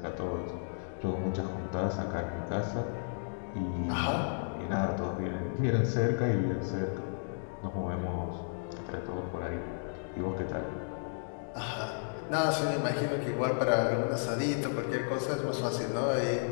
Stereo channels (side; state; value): right; silent; digital silence